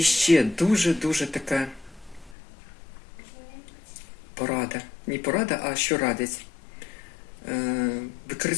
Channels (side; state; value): right; drops out; at 2.4 s